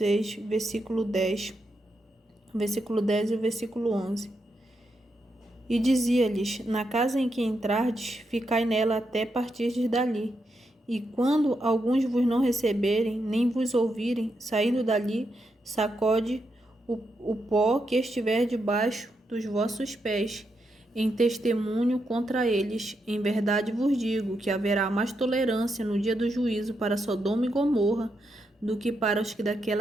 versículo 10 e versículo 11. E dizia-lhes: Na casa em que entrardes, ficai nela até partirdes dali. E quando alguns vos não receberem, nem vos ouvirem, saindo dali, sacode o pó que estiver debaixo dos vossos pés, em testemunho contra eles. Em verdade vos digo que haverá mais tolerância no dia do juízo para Sodoma e Gomorra do que para os que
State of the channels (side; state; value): both; normal; correlation 0.83